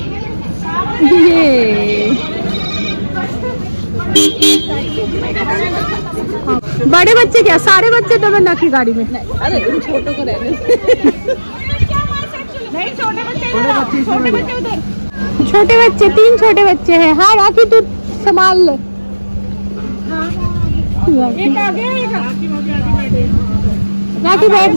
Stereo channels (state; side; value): inverted; both; correlation -1.00